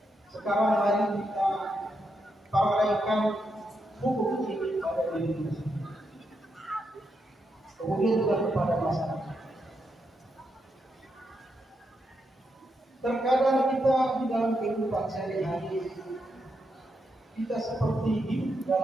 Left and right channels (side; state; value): both; normal; correlation 0.82